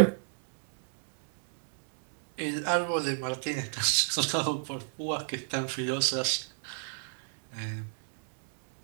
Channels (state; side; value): silent; left; 58 dB below the other